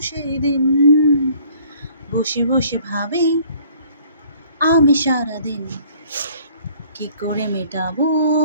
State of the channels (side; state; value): both; inverted; correlation -0.56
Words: সেদিন। বসে বসে ভাবি আমি সারাদিন কি করে মেটাবো